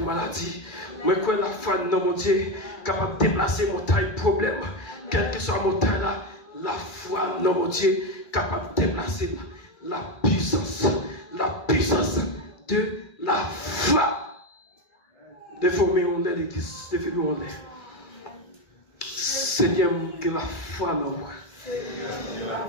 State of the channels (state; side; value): late; right; 2.3 ms